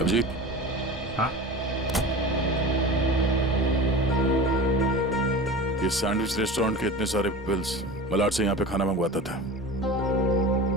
हाँ? ये सैंडविच रेस्टोरेंट के इतने सारे बिल्स मलाड से यहाँ पे खाना मंगवाता था।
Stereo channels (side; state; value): both; normal; correlation 0.34